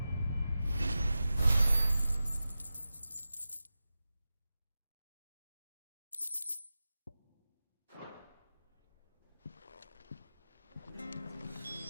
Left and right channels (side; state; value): both; inverted; correlation -0.94